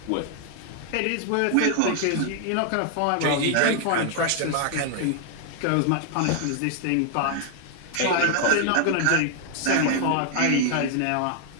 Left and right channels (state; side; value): different; both; correlation 0.00